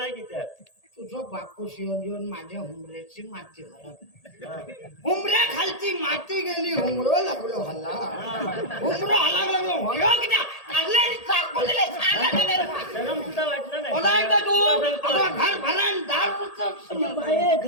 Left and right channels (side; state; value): right; late; 1.8 ms